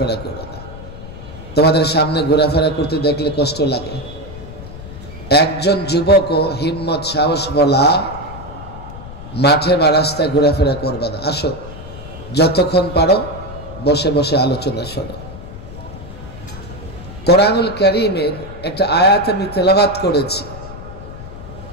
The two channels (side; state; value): left; noise; rumble, 14 dB below the sound